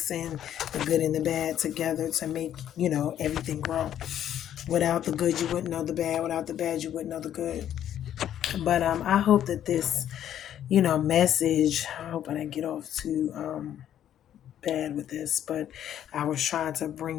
in the good and the bad together to make, everything grow. Without the good, you wouldn't know the bad. Without the bad, you wouldn't know the good. But I hope that this, message, I hope I didn't get off too bad with this, but I was trying to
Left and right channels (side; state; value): right; quieter; 10.7 dB